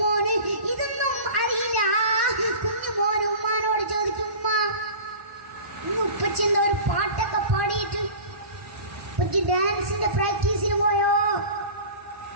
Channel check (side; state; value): left; late; 1.0 ms